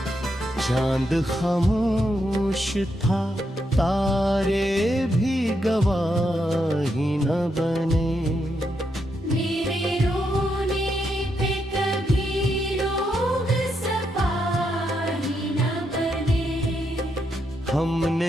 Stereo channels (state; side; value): normal; both; correlation 0.81